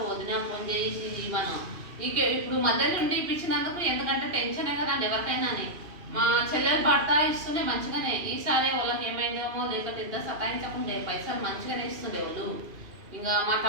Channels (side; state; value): left; late; 2.7 ms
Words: వదిన ఫోన్ చేసి మనం ఇప్పుడు మధ్యలో ఉండి ఇప్పించినందుకు. ఎందుకంటే టెన్షనే కదండి ఎవరికైనా. మా చెల్లెలు భర్త ఇస్తుండే మంచిగానే, ఈసారి వాళ్ళకి ఏమైందేమో, లేకపోతే ఇద్దరు సతాయించకుండే పైసలు మంచిగానే ఇస్తుండే వాళ్ళు. ఇంకా మా